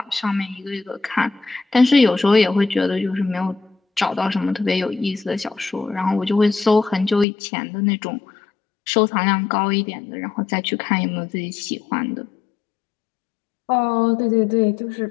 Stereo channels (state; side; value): drops out; right; at 7.2 s